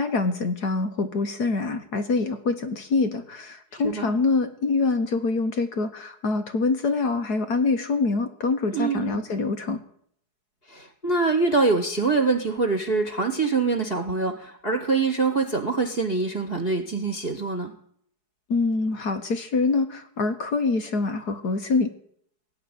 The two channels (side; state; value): right; late; 4.7 ms